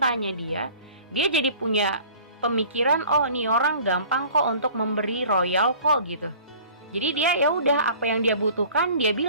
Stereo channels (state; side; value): inverted; both; correlation -0.47